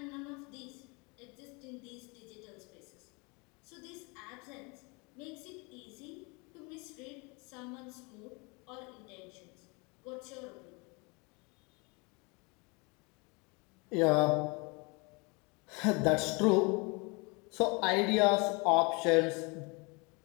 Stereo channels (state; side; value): quieter; right; 29.4 dB